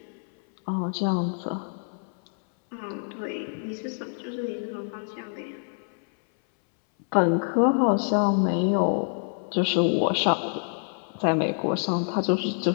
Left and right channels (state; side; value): silent; right; 61 dB below the other